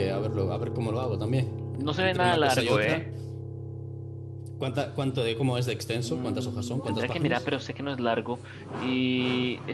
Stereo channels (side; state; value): both; identical; correlation 1.00